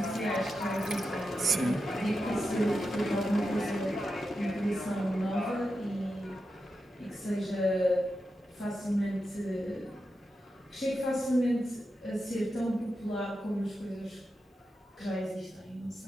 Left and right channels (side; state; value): both; normal; correlation 0.89